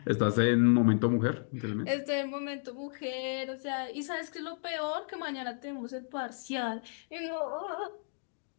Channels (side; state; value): right; silent; digital silence